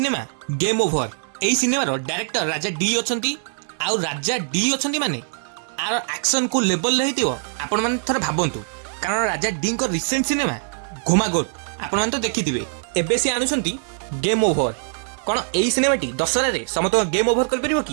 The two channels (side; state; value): left; silent; digital silence